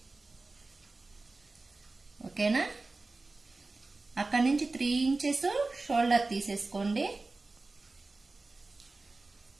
ఓకేనా. అక్కడి నుంచి 3 ఇంచెస్ షోల్డర్ తీసేసుకోండి.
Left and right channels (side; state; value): left; quieter; 3.4 dB